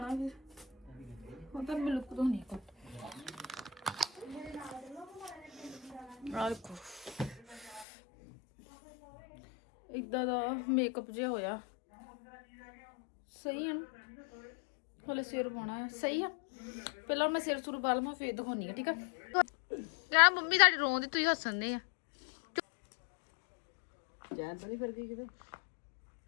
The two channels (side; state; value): right; drops out; at 7.9 s